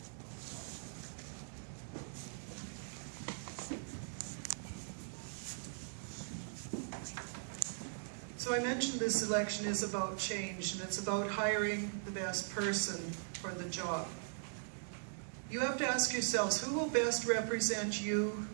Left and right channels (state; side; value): silent; left; digital silence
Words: So I mentioned this election is about change, and it's about hiring the best person for the job. You have to ask yourselves, who will best represent you